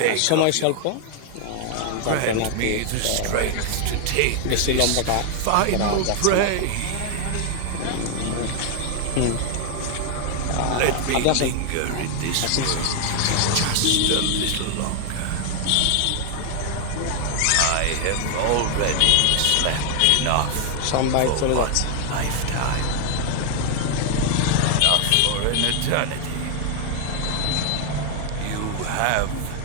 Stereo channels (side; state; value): both; different; correlation 0.00